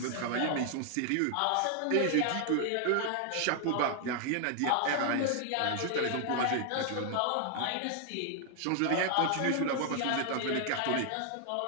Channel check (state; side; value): different; both; correlation 0.00